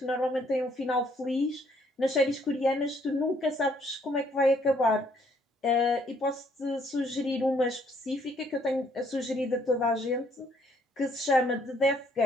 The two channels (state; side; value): normal; both; correlation 0.66